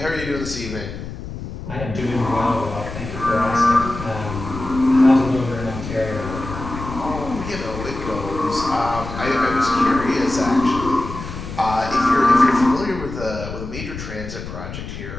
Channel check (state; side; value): noise; left; rumble, 9 dB below the sound